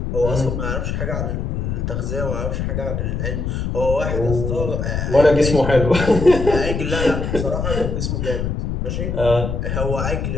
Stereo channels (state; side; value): noise; left; rumble, 2 dB below the sound